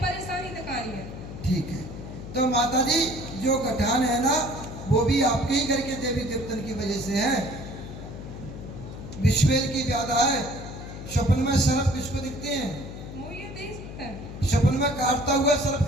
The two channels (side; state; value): left; noise; hum, 11 dB below the sound